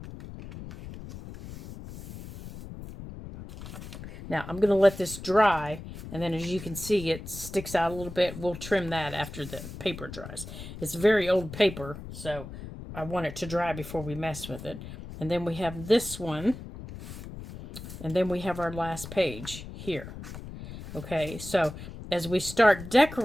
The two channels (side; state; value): left; noise; rumble, 12 dB below the sound